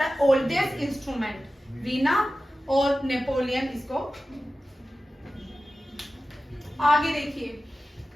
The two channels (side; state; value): both; normal; correlation 0.95